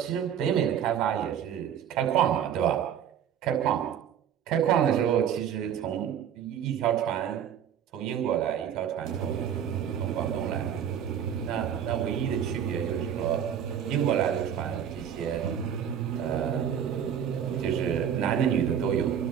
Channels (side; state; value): left; quieter; 9.0 dB